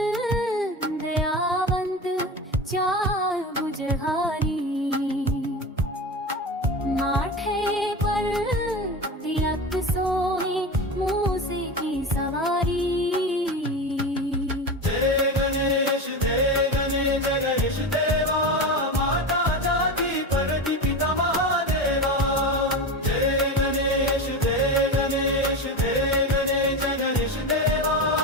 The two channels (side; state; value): both; normal; correlation 0.24